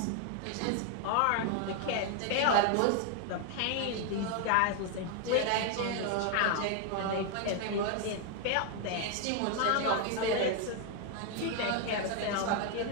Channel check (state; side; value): different; both; correlation 0.00